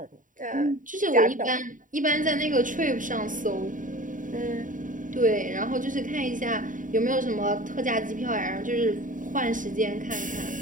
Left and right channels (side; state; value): left; late; 0.38 ms